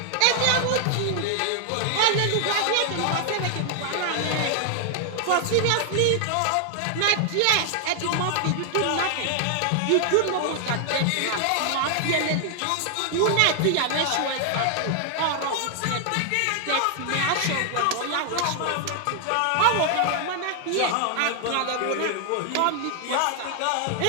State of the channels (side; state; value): both; different; correlation 0.00